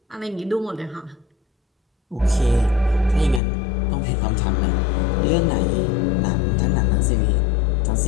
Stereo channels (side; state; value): right; drops out; at 3.4 s